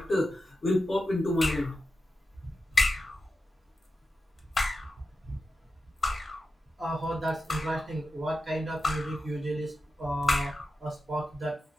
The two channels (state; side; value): normal; both; correlation 0.91